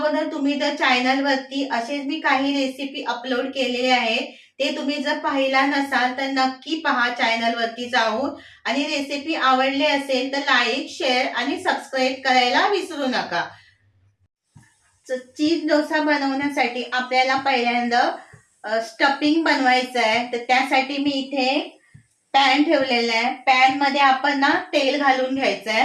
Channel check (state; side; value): identical; both; correlation 1.00